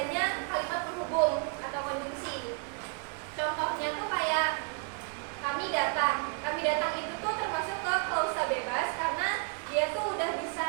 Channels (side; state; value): left; quieter; 37.1 dB